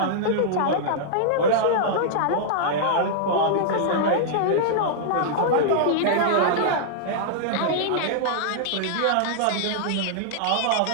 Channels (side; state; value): both; different; correlation -0.02